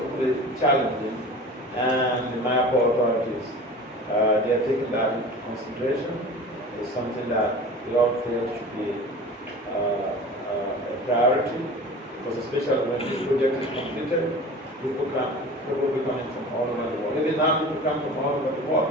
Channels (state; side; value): normal; both; correlation 0.37